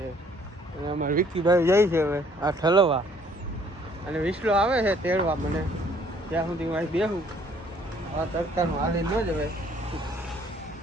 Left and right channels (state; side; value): normal; both; correlation 0.61